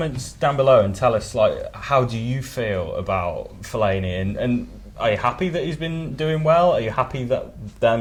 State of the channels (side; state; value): both; identical; correlation 1.00